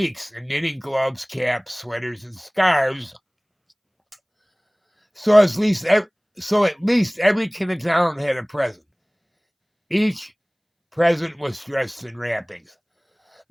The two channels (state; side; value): identical; both; correlation 1.00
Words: in knitting gloves, caps, sweaters, and scarves. So at least every kid in town had a present. Each present was dressed in wrappings.